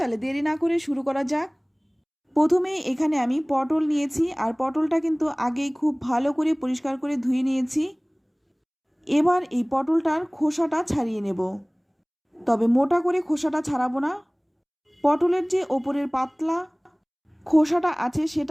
দেরি না করে শুরু করা যাক। প্রথমে এখানে আমি পটল নিয়েছি, আর পটলটা কিন্তু আগেই খুব ভালো করে পরিষ্কার করে ধুয়ে নিয়েছি। এবার এই পটলটার খোসাটা ছাড়িয়ে নেব, তবে মোটা করে খোসাটা ছাড়াবো না। পটলের যে ওপরের পাতলা খোসাটা আছে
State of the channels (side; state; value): both; identical; correlation 1.00